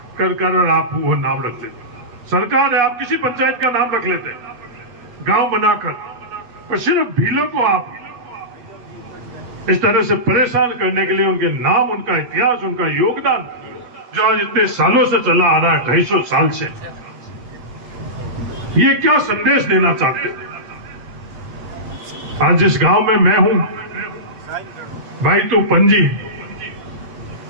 कर कर और आप वो नाम रख लेते। सरकार है, आप किसी पंचायत का नाम रख लेते गांव बनाकर, और सिर्फ भीलों को आप इस तरह से परेशान करने के लिए उनके नाम, उनका इतिहास, उनका योगदान जो आज इतने सालों से चला आ रहा है, 250 साल से, ये क्या संदेश देना चाहते हैं? आज जिस गांव में मैं हूं, भाई तो पंजी,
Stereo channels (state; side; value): late; left; 8.2 ms